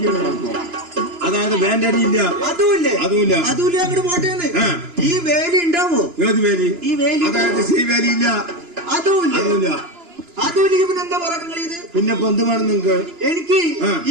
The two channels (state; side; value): late; left; 2.9 ms